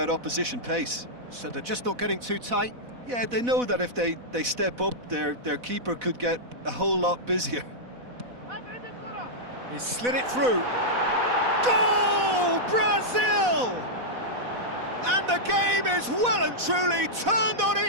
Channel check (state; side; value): late; left; 4.1 ms